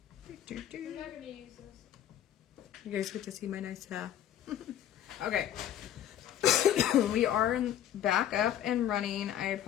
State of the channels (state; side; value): quieter; right; 11.0 dB